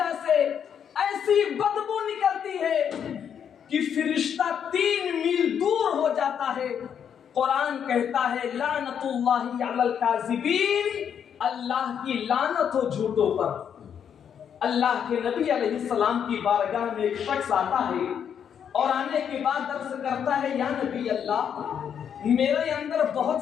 سے ایسی بدبو نکلتی ہے کہ فرشتہ 3 میل دور ہو جاتا ہے۔ قرآن کہتا ہے لعنت اللہ علی الکاذبین، اللہ کی لعنت ہو جھوٹوں پر۔ اللہ کے نبی علیہ السلام کی بارگاہ میں ایک شخص آتا ہے اور آنے کے بعد عرض کرتا ہے، یا نبی اللہ، میرے اندر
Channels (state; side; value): quieter; right; 8.2 dB